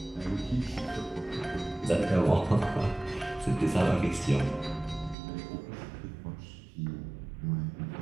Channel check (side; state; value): left; drops out; at 5.2 s